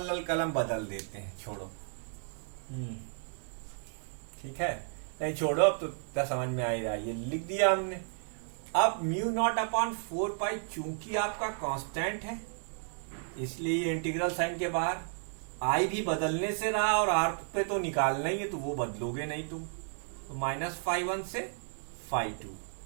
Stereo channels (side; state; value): left; silent; digital silence